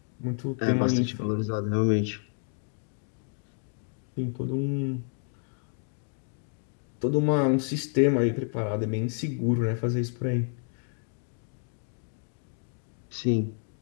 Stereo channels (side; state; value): right; silent; 58 dB below the other